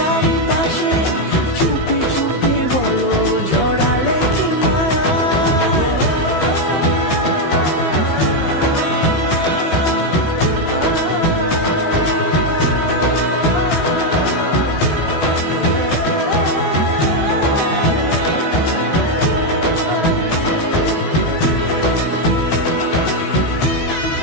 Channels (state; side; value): late; right; 15 ms